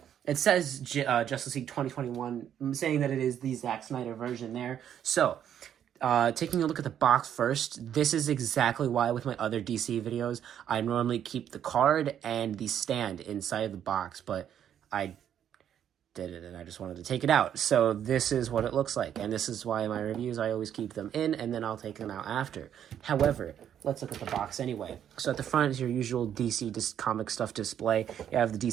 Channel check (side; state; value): left; quieter; 9.6 dB